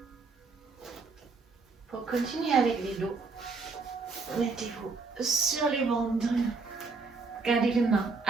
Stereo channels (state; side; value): quieter; left; 4.3 dB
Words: continuez avec les dos. Mettez-vous sur les ventres. Gardez les mains